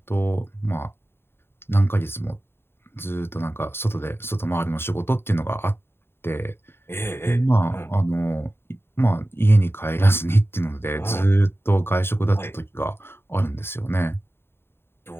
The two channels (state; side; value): late; right; 0.11 ms